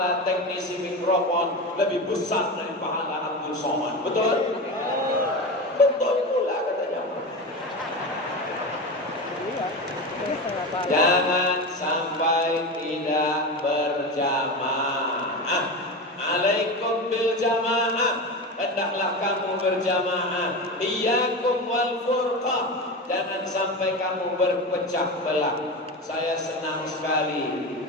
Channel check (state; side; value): normal; both; correlation 0.23